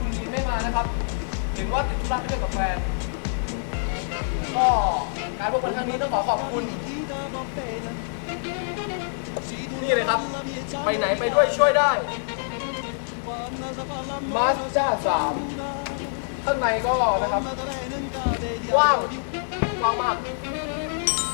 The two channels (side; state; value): right; silent; digital silence